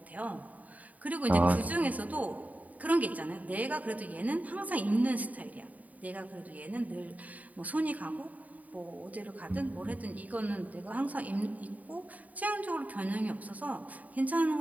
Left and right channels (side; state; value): left; late; 0.072 ms